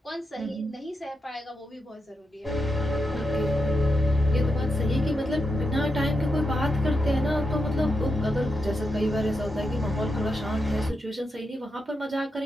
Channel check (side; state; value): both; normal; correlation 0.86